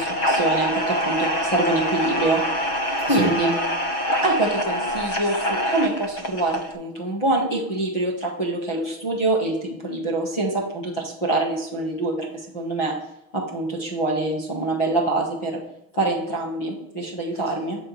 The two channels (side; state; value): right; late; 6.2 ms